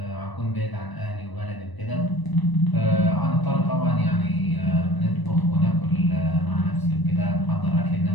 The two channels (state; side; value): late; right; 1.0 ms